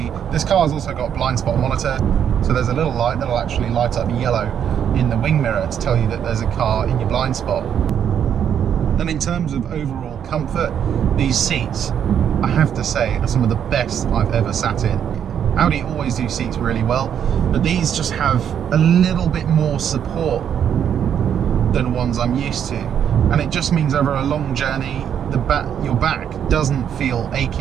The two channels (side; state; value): left; quieter; 8.8 dB